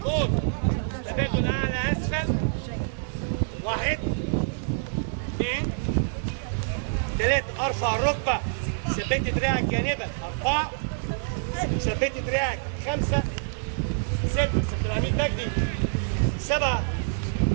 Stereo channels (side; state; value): left; silent; digital silence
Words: تبادل اعلى اسفل. 1 2 3 ارفع الركبة، ثبت دراعك جانبا. 4 ثبت دراعك. 5 6 سيد العميد مجدي. 7